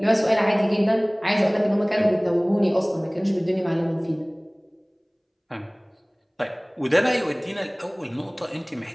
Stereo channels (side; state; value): both; identical; correlation 1.00